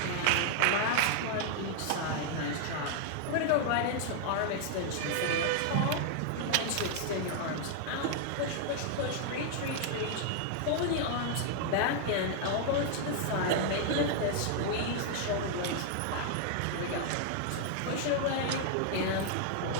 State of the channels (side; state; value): both; different; correlation 0.00